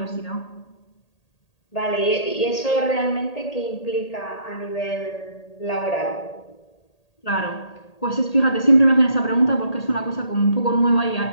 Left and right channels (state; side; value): late; right; 1.8 ms